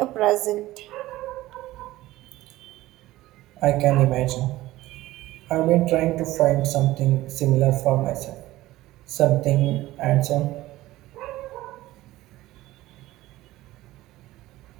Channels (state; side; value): quieter; left; 16.8 dB